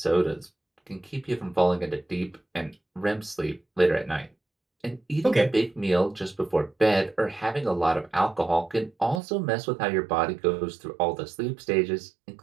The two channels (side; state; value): left; drops out; at 9.2 s